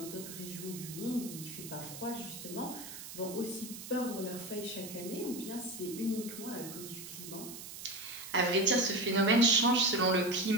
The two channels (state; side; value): noise; right; hiss, 11 dB below the sound